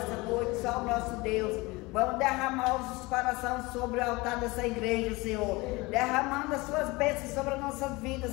noite só o nosso Deus. Vamos derramar os corações sobre o altar dessa igreja, Senhor. Derramando as suas bênçãos sobre as nossas vidas,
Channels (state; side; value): quieter; right; 23.3 dB